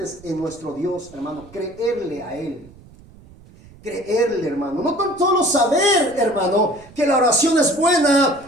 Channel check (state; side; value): noise; right; rumble, 23 dB below the sound